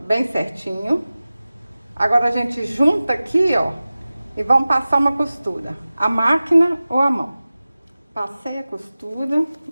bem certinho. Agora a gente junta aqui, ó, e vamos passar uma costura, a máquina ou a mão. Passei a costura,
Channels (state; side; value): inverted; both; correlation -0.97